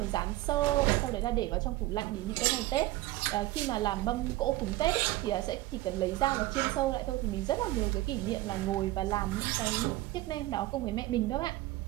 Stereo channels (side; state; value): left; quieter; 17.4 dB